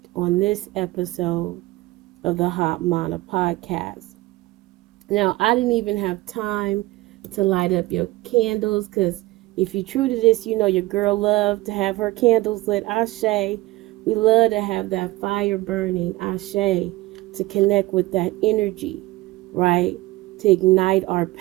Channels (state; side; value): quieter; left; 19.4 dB